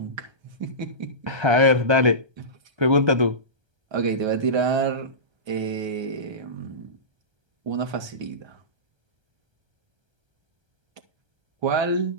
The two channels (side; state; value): left; late; 1.3 ms